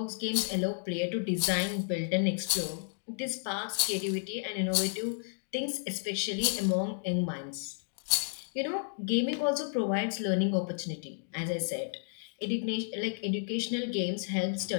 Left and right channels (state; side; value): silent; right; digital silence